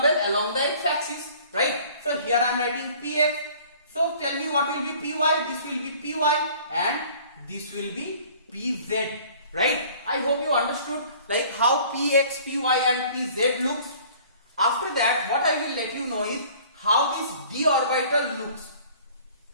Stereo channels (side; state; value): both; inverted; correlation -0.51